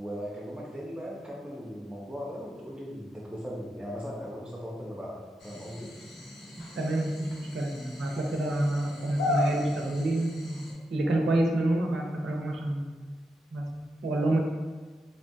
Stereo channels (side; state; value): both; normal; correlation 0.85